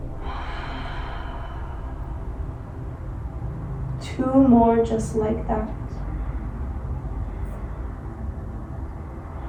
Two more just like that.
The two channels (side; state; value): both; identical; correlation 1.00